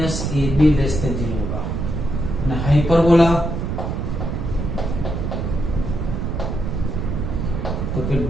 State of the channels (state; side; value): noise; right; rumble, 3 dB below the sound